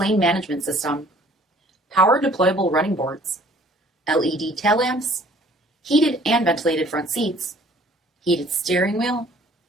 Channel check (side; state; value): both; normal; correlation 0.55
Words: management system, power deployable running boards, LED tail lamps, heated and ventilated front seats, heated steering wheel,